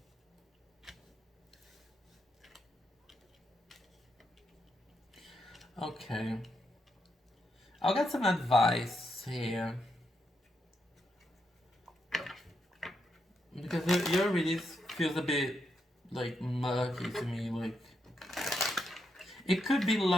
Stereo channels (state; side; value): normal; both; correlation 0.81